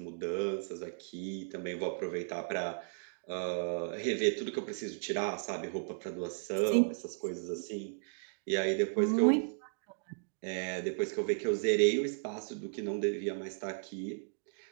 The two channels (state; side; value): silent; left; digital silence